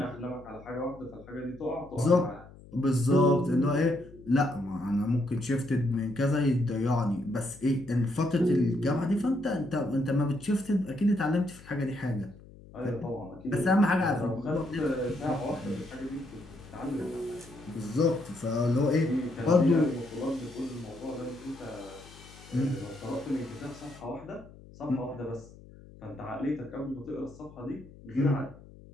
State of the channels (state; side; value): noise; left; hum, 20 dB below the sound